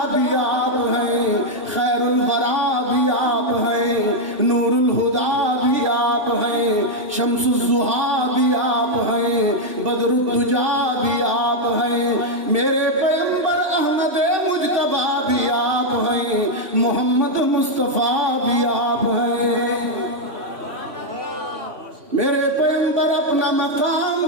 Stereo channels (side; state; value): left; late; 3.0 ms